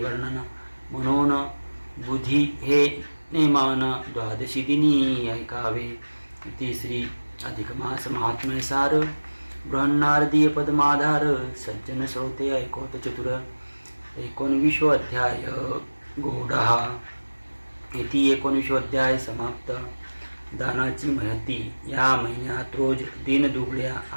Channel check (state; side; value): inverted; both; correlation -1.00